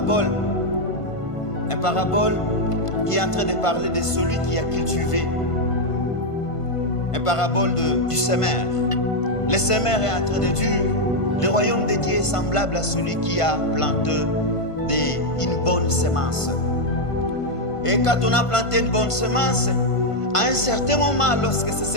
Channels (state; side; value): late; right; 1.5 ms